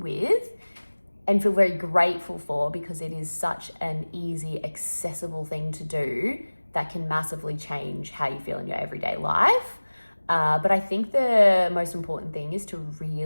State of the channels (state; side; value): inverted; both; correlation -1.00